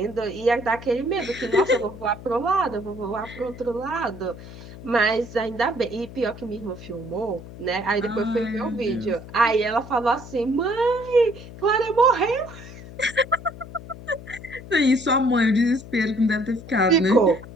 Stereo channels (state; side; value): noise; left; hum, 15 dB below the sound